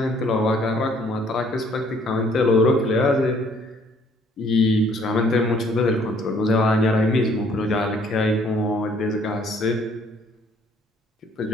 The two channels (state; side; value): normal; both; correlation 0.61